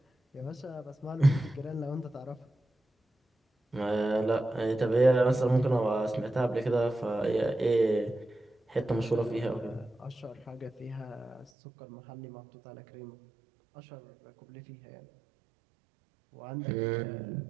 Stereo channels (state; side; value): drops out; left; at 11.5 s